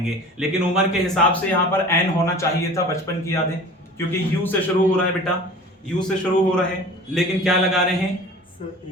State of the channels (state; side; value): normal; both; correlation 0.41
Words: लेकिन उम्र के हिसाब से यहां पर एन होना चाहिए था, बचपन की यादें, क्योंकि यू से शुरू हो रहा है बेटा, यू से शुरू हो रहा है, लेकिन क्या लगा रहे हैं,